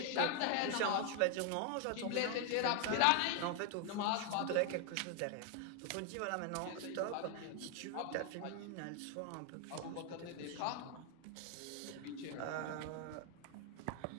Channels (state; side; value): different; both; correlation 0.01